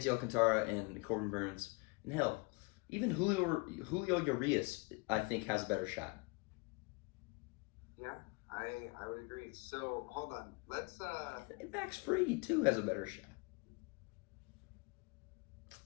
Alcantara and Corbin Burns, and hell, even Julio Urias, I think, has a better shot. Yeah, I would agree. So hold on, let's Max Fried too has a better shot.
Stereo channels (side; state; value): right; quieter; 28.9 dB